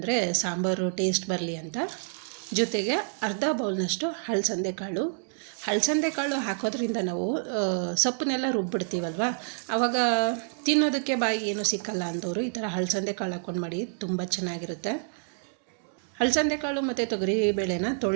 ಸಾಂಬಾರು ಟೇಸ್ಟ್ ಬರಲಿ ಅಂತ. ಜೊತೆಗೆ ಅರ್ಧ ಬೌಲ್ನಷ್ಟು ಹಲಸಂದೆ ಕಾಳು ಹಾಕೋದ್ರಿಂದ ನಾವು ಸೊಪ್ಪನ್ನೆಲ್ಲ ರುಬ್ಬಿಡ್ತೀವಲ್ವ, ಆವಾಗ ತಿನ್ನೋದಕ್ಕೆ ಬಾಯಿ ಏನೂ ಸಿಕ್ಕಲ್ಲ ಅಂದವರು ಈ ಥರ ಹಲಸಂದೆ ಕಾಳು ಹಾಕ್ಕೊಂಡು ಮಾಡಿ, ತುಂಬ ಚೆನ್ನಾಗಿರುತ್ತೆ. ಹಲಸಂದೆ ಕಾಳು ಮತ್ತು ತೊಗರಿಬೇಳೆನ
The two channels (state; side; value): silent; left; digital silence